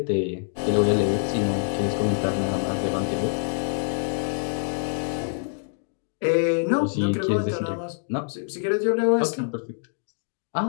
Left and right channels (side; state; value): right; silent; digital silence